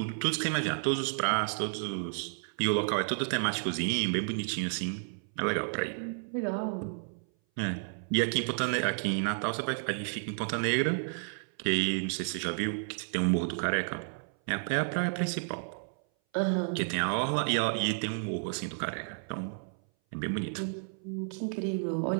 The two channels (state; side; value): silent; left; 57 dB below the other